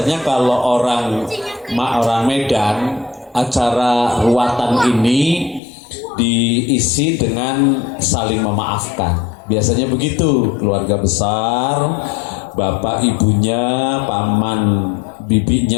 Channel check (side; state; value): right; drops out; at 5.6 s